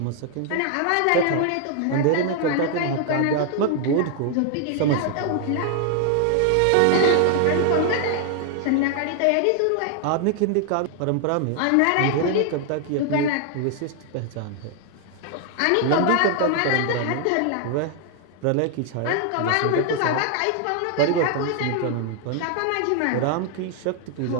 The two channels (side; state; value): both; different; correlation 0.00